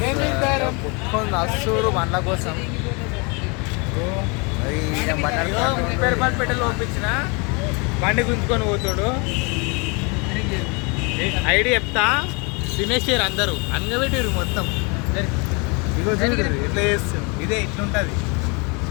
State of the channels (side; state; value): right; quieter; 31.0 dB